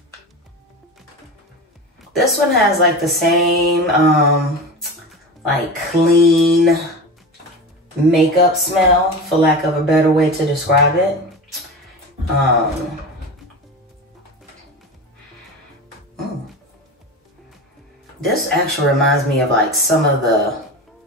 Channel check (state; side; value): normal; both; correlation 0.28